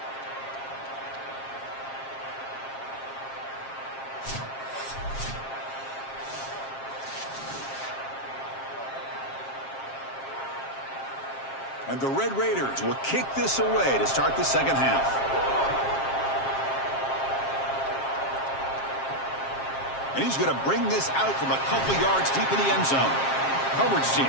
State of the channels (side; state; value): right; late; 7.5 ms